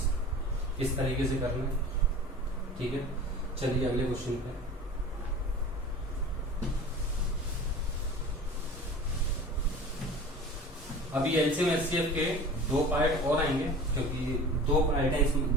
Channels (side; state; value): both; normal; correlation 0.39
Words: इस तरीके से करना है। ठीक है, चलिए अगले क्वेश्चन पे। अभी एलसीएम एचसीएफ के 2 पार्ट और आएंगे, क्योंकि 2 पार्ट है इसमें,